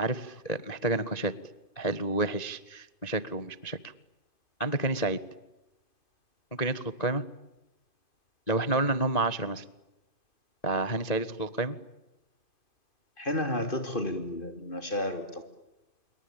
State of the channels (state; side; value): late; right; 2.5 ms